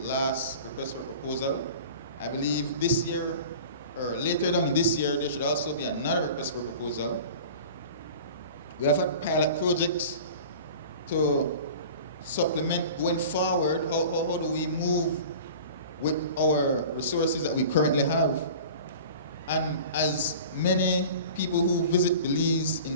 last request for proposal. I believe this year, or later down in this year, there should also be another request for proposal. We have had pilot projects to supplement going forward. How do we move with our resources that we currently have. And as many people who visit Belize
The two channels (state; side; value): inverted; both; correlation -0.39